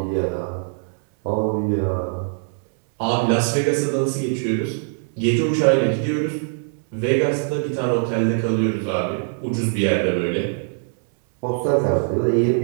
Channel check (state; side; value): silent; left; 64 dB below the other